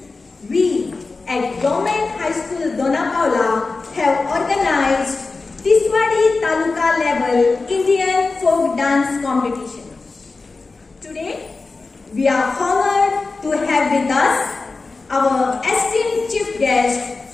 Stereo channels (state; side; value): quieter; right; 3.9 dB